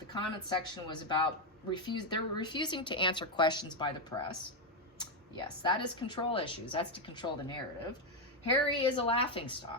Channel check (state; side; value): normal; both; correlation 0.04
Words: comment section was about they're refusing to answer questions by the press. Yes, that is control issues. That's to control the narrative. Harry is a